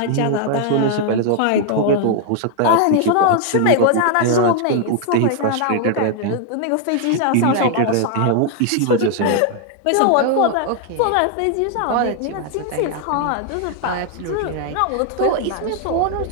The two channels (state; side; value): different; both; correlation 0.00